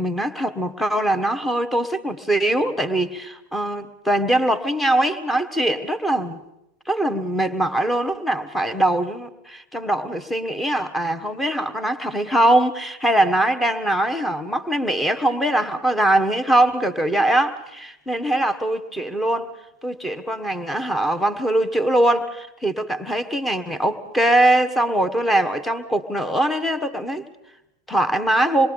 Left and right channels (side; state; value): both; normal; correlation 0.79